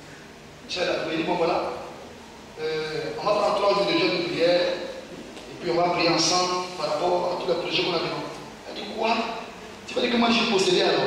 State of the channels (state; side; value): identical; both; correlation 1.00